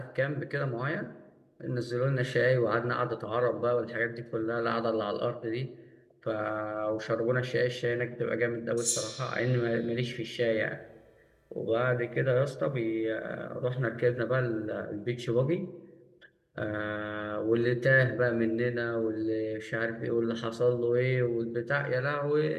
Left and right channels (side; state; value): both; identical; correlation 1.00